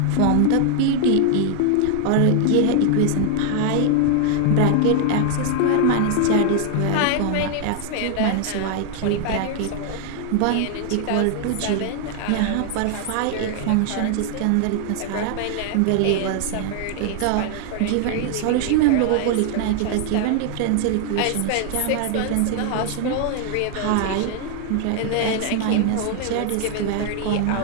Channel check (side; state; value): both; different; correlation 0.00